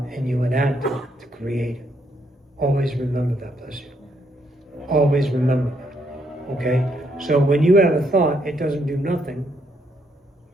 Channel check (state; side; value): normal; both; correlation 0.74